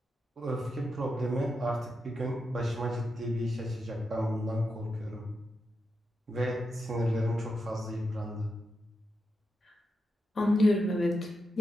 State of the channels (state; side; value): normal; both; correlation 0.86